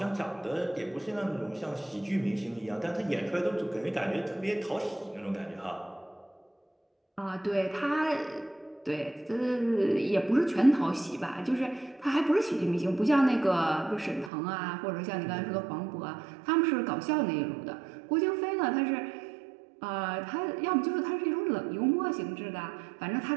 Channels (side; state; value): left; drops out; at 14.3 s